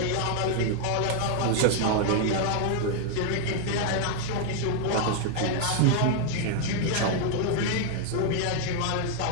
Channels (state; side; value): different; both; correlation 0.00